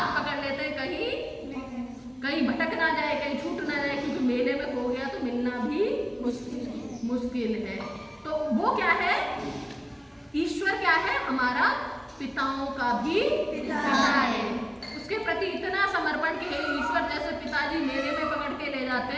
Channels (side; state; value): both; identical; correlation 1.00